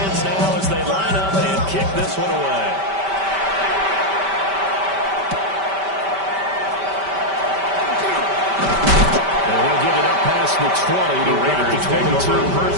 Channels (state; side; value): late; left; 5.1 ms